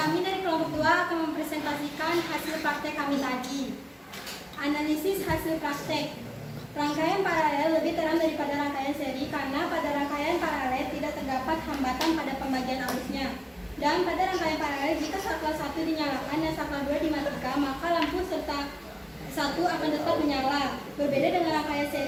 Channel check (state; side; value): identical; both; correlation 1.00